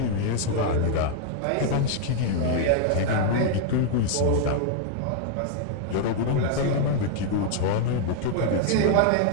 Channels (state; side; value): different; both; correlation 0.00